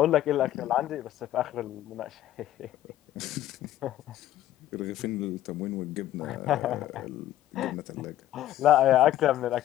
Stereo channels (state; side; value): quieter; right; 13.2 dB